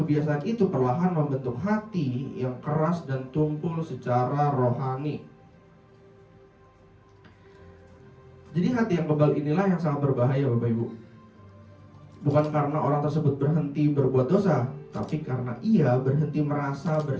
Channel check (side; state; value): both; identical; correlation 1.00